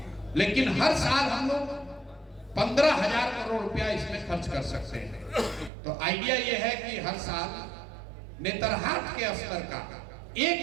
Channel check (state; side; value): drops out; left; at 5.7 s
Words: लेकिन हर साल हम लोग 15,000 करोड़ रुपया इसमें खर्च कर सकते हैं। तो आइडिया यह है कि हर साल नेतरहाट के स्तर का